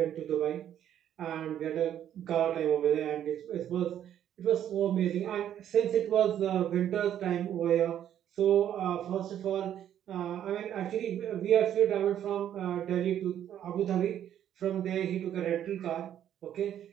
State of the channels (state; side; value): quieter; left; 10.5 dB